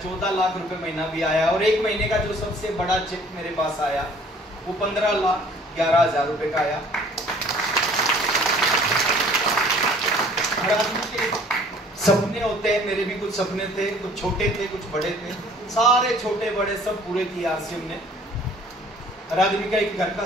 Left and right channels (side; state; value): both; normal; correlation 0.54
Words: लाख रुपए महीना भी आया। और एक महीने का जो सबसे बड़ा चेक मेरे पास आया वो 15,11,000 रुपए का आया। हर आदमी के सपने होते हैं, मेरे भी कुछ सपने थे, कुछ छोटे थे, कुछ बड़े थे, सारे छोटे बड़े सब पूरे किए आरसीएम ने। हर आदमी का एक घर का